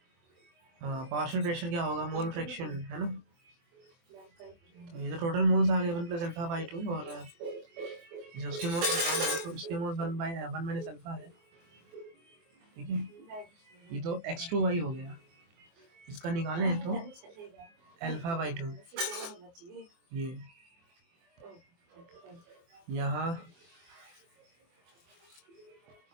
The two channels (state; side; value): late; left; 24 ms